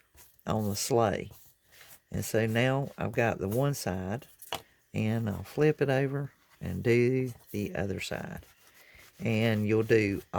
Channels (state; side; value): identical; both; correlation 1.00